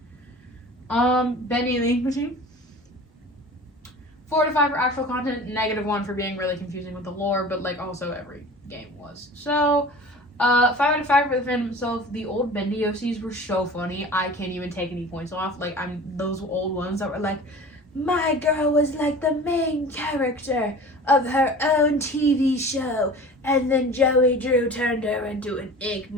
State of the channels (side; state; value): both; normal; correlation 0.40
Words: Bendy and the Ink Machine. 4 out of 5 for actual content. -1 for being really confusing with the lore, but like also every game was. So 5 out of 5 for the fandom itself. The old Bendy OCs were so funny. I can't even take any points off. Like those old ones that were like, my girl was like the main character of her own TV show, and then Joey Drew turned her into an ink